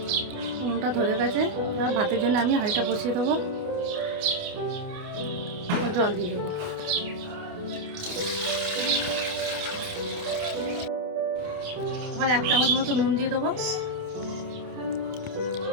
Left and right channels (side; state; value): left; late; 28 ms